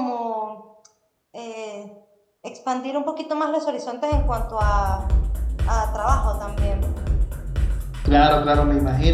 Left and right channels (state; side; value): identical; both; correlation 1.00